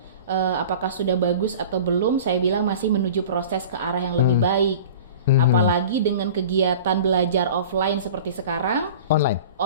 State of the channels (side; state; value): both; inverted; correlation -0.40